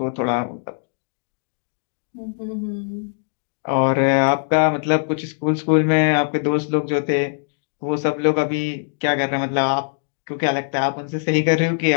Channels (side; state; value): right; silent; digital silence